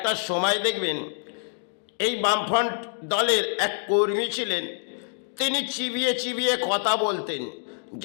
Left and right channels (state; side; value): silent; right; digital silence